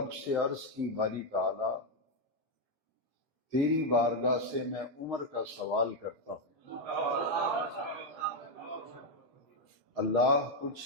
سے عرض کی، باری تعالی تیری بارگاہ سے میں عمر کا سوال کرتا ہوں، اللہ تجھ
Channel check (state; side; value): normal; both; correlation 0.03